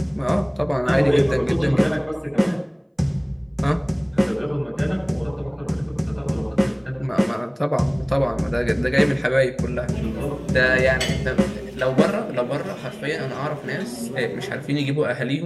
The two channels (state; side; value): identical; both; correlation 1.00